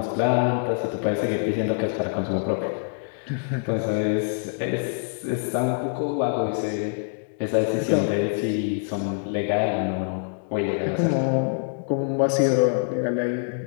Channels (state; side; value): silent; right; digital silence